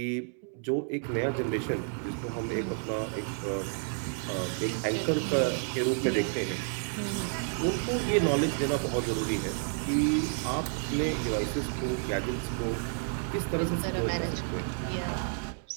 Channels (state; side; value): silent; left; 57 dB below the other